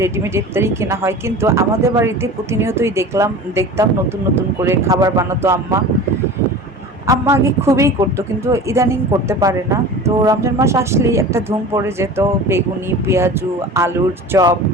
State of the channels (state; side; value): normal; both; correlation 0.36